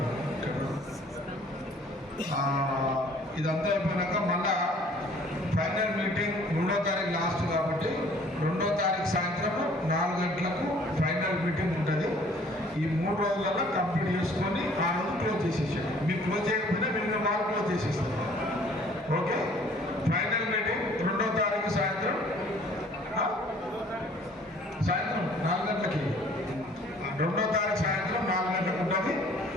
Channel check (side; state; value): both; normal; correlation 0.55